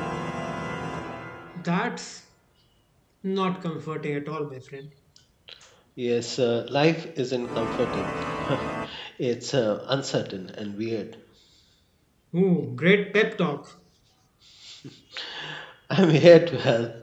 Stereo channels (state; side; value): identical; both; correlation 1.00